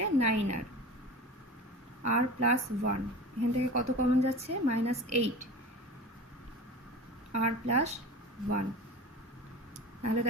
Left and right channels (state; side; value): normal; both; correlation 0.33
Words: 9r, আর প্লাস 1, এখান থেকে কত কমন যাচ্ছে মাইনাস 8 আর প্লাস 1। তাহলে